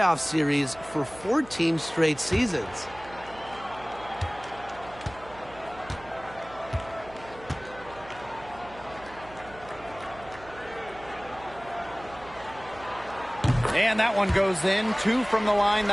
series for 14 straight seasons. And that one goes in. 2 from the line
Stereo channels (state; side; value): noise; right; hum, 19 dB below the sound